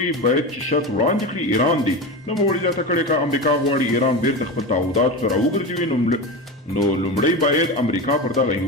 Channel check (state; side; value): normal; both; correlation 0.23